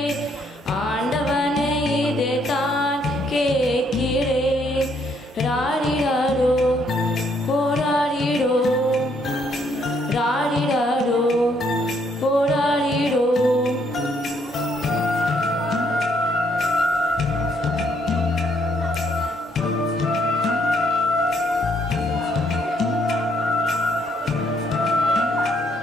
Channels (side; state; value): both; normal; correlation 0.70